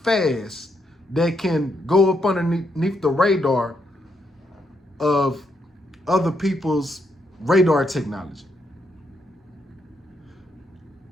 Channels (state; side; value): normal; both; correlation 0.78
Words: fast, that can go up underneath the radar of other people's radar technology.